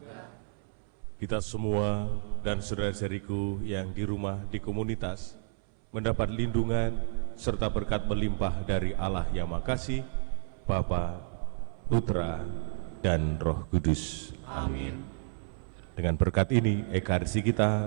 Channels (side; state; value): left; silent; 57 dB below the other